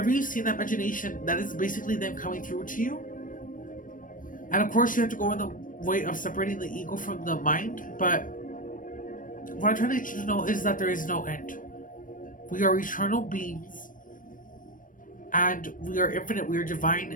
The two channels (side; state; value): right; late; 0.39 ms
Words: you see in that imagination, that is basically them coming through to you. And of course, you have to go in the way of separating the ego from the mind. But what I'm trying to let you to know is that there is no end. We are eternal beings. And we are infinite, we are